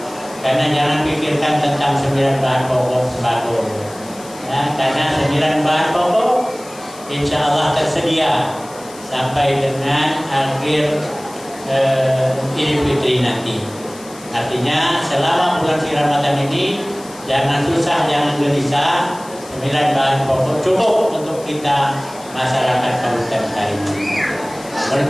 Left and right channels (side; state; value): left; noise; hiss, 19 dB below the sound